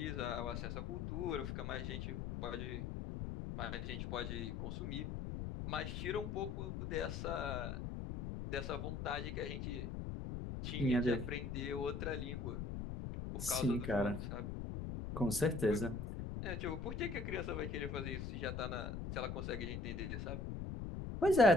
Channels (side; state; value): left; noise; rumble, 4 dB below the sound